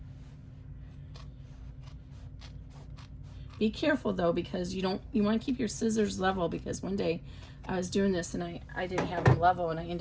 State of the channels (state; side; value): identical; both; correlation 1.00